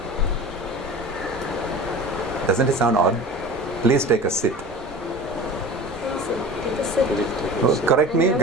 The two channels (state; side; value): normal; both; correlation 0.37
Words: Doesn't it sound odd? Please take a sit. Take a sit. Correct me